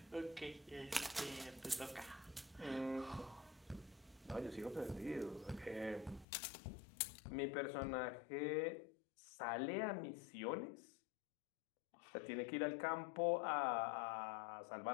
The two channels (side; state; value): right; drops out; at 6.2 s